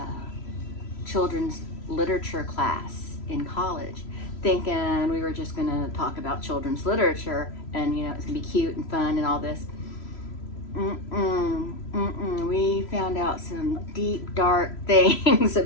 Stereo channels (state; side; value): late; right; 3.0 ms